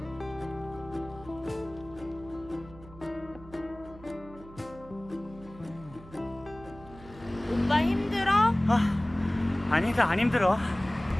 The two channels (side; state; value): right; noise; hum, 19 dB below the sound